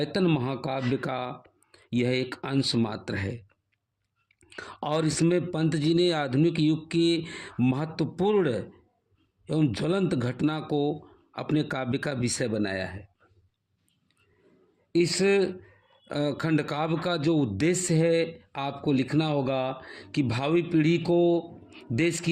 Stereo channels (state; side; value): identical; both; correlation 1.00